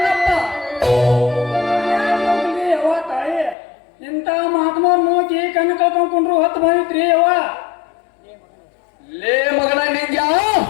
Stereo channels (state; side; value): drops out; right; at 3.6 s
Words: ಯವ್ವ ತಾಯಿ, ಇಂಥ ಮಹಾತ್ಮವ್ರು ನೋಕಿ ಕಣ್ಣು ಕಳ್ಕೊಂಡ್ರು ಹೊತ್ತು ಬಂದಿತ್ರಿ ಯವ್ವ. ಲೇ ಮಗನ,